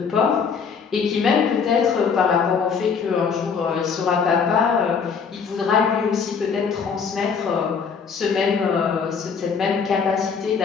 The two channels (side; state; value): right; quieter; 6.0 dB